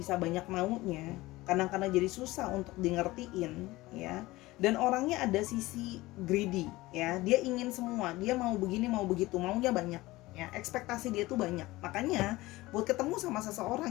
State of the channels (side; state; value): right; quieter; 19.2 dB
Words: banyak maunya, kadang-kadang jadi susah untuk di-ngertiin ya. Dan orangnya ada sisi greedy ya, dia ingin semua, dia mau begini mau begitu, maunya banyak ya, ekspektasi dia tuh banyak. Makanya buat ketemu sama seseorang